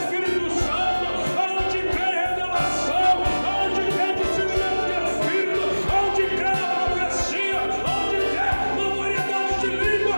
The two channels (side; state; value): both; inverted; correlation -1.00